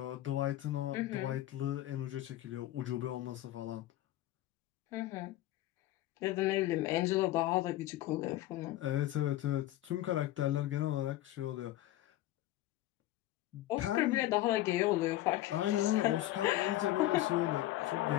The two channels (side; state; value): right; quieter; 15.1 dB